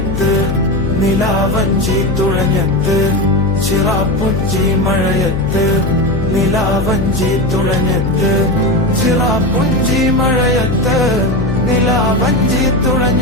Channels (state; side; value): noise; left; hum, 4 dB below the sound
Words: നിലാവഞ്ചി തുഴഞ്ഞത്ത് ചിറാപ്പുഞ്ചി മഴയത്ത് നിലാവഞ്ചി തുഴഞ്ഞത്ത് ചിറാപ്പുഞ്ചി മഴയത്ത് നിലാവഞ്ചി